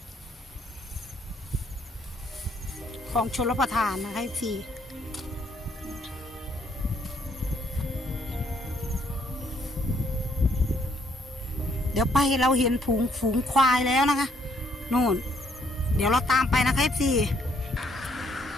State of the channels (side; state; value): both; normal; correlation 0.69